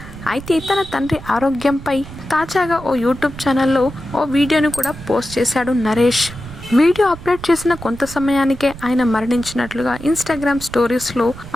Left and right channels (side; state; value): right; noise; rumble, 15 dB below the sound